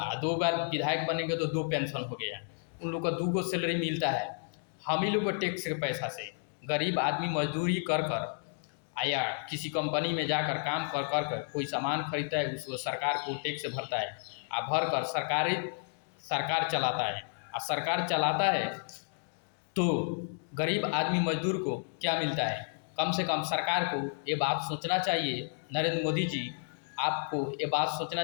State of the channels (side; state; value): right; silent; digital silence